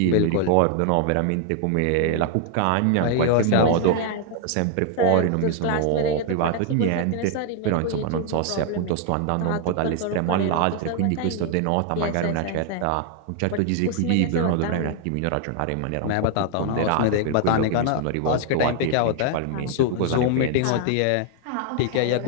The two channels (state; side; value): different; both; correlation 0.00